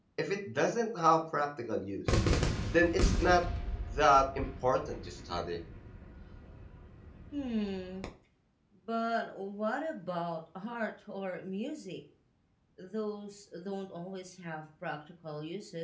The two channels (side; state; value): both; identical; correlation 1.00